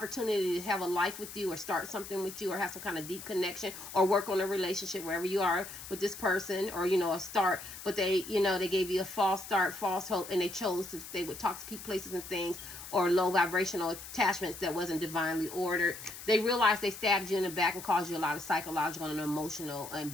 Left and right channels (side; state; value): left; noise; hiss, 12 dB below the sound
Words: to have a life with you or start something with you or have some kind of deep connection or work on a relationship wherever you are with this person or, you know, a start. But they, you know, they gave you a false start, false hope, and they chose to stay with toxic places and things or low vibrational attachments that wasn't divinely ordered. They realized they stabbed you in the back and caused you a lot of psychological and emotional and